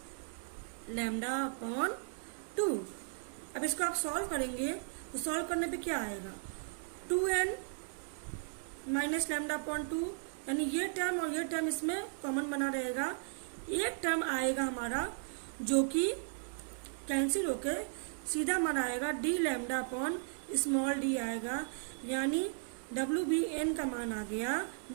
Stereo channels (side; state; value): left; silent; digital silence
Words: lambda upon 2। अब इसको आप सॉल्व करेंगे तो सॉल्व करने पे क्या आएगा, 2n माइनस लैम्डा अपॉन 2, यानी ये टर्म और ये टर्म इसमें कॉमन बना रहेगा। एक टर्म आएगा हमारा जो कि कैंसिल होके सीधा हमारा आएगा D lambda upon small D आएगा, यानी WBN का मान आ गया